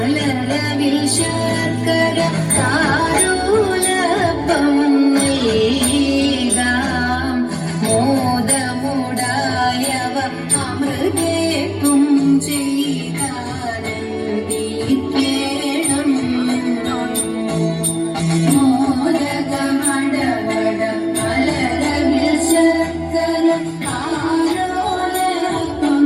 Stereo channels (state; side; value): identical; both; correlation 1.00